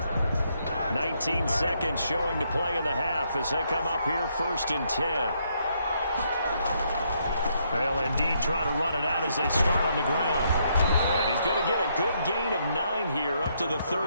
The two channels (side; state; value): both; inverted; correlation -0.74